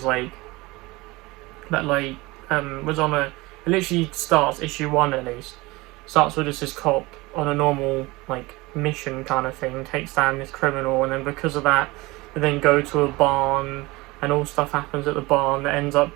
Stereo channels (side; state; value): left; quieter; 22.3 dB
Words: like, was on a, it literally starts, issue 1 at least, starts with just this cop on a normal like mission kind of thing, takes down this criminal, and then because of that they then go to a barn, and all stuff happens at the barn that ends up